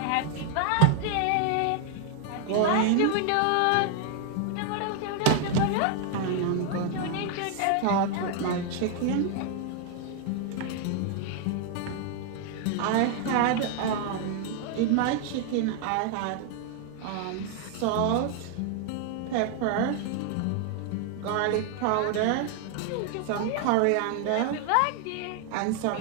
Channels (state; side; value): different; both; correlation 0.00